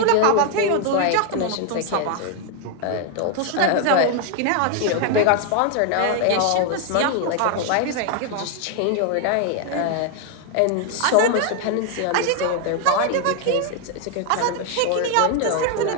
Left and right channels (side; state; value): both; different; correlation 0.00